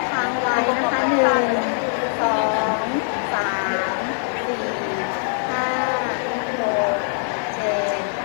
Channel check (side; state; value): right; silent; 64 dB below the other